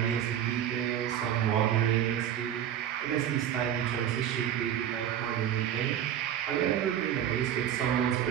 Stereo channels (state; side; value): quieter; left; 10.3 dB